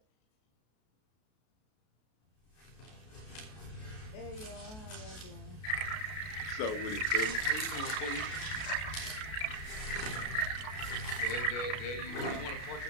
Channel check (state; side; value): late; right; 33 ms